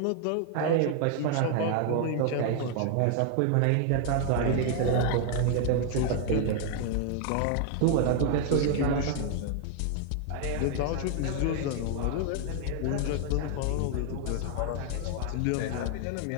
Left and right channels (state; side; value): different; both; correlation 0.00